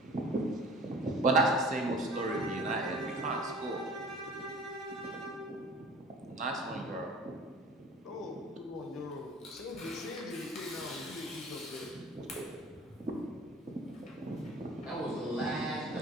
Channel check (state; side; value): normal; both; correlation 0.45